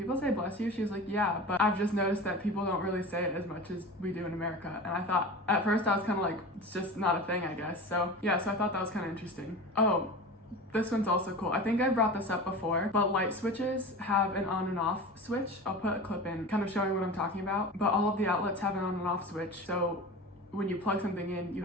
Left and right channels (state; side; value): normal; both; correlation 0.31